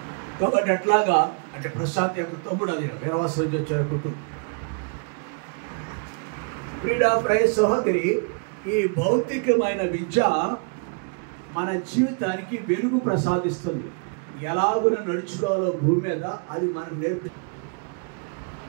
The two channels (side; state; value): left; quieter; 37.6 dB